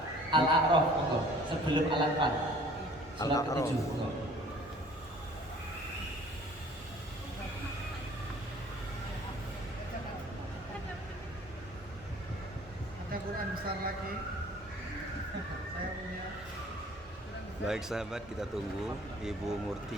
Al-A'raf, monggo sebelum Al-Anfal. Surat Al-A'raf. ke-7, monggo. Ada Quran besar lagi. Saya punya. Baik sahabat, kita tunggu Ibu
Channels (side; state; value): both; normal; correlation 0.52